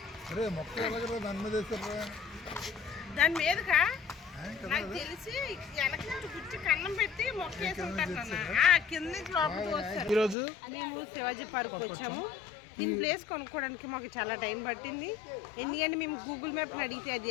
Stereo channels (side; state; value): right; drops out; at 10.4 s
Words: దాని మీదకా నాకు తెలిసి వెనక నుంచి గుచ్చి కన్నం పెట్టి మొక్కేసి ఉంటారు కింద నుంచి లోపలికి వస్తారు. ఈరోజు మేము శివాజీ పార్క్ వచ్చాము. దీని ప్లేస్ కొనుక్కోవడానికి మాకు చాలా టైం పట్టింది. ఎందుకంటే మేము గూగుల్ మ్యాప్ అడిగితే